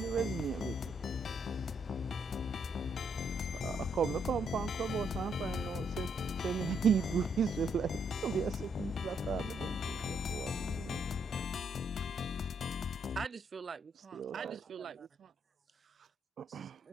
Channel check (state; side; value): normal; both; correlation 0.74